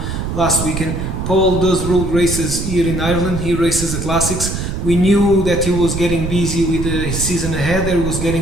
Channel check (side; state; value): right; noise; rumble, 4 dB below the sound